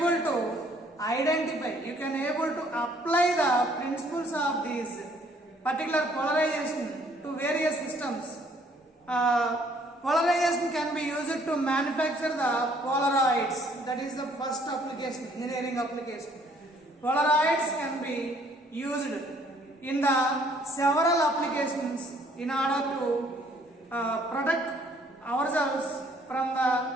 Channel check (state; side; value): normal; both; correlation 0.62